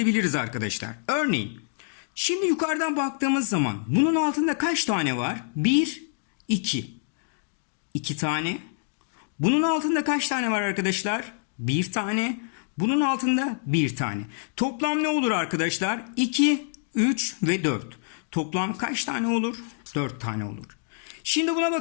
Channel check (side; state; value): right; silent; digital silence